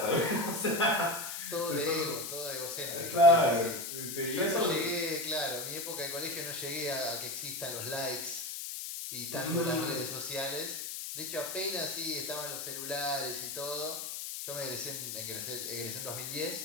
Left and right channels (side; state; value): left; noise; hiss, 6 dB below the sound